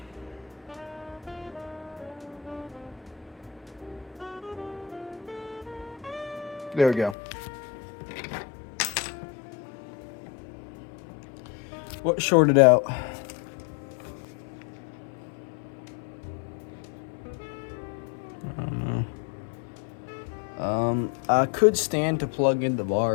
There we go. What shorted out? I don't know. I could stand to plug in the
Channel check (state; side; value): drops out; right; at 7.2 s